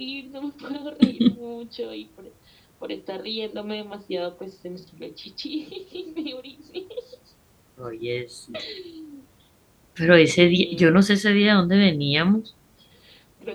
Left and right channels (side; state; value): both; identical; correlation 1.00